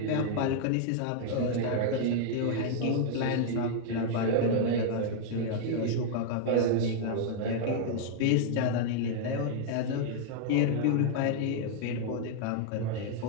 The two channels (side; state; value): both; different; correlation 0.00